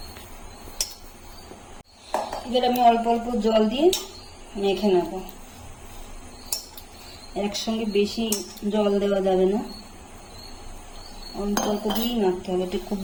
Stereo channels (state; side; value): identical; both; correlation 1.00